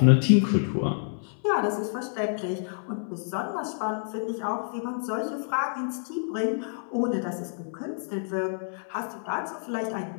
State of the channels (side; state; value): right; silent; 59 dB below the other